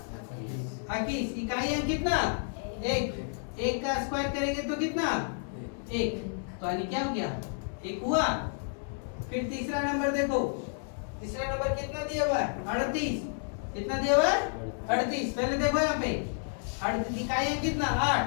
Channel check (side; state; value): right; silent; 57 dB below the other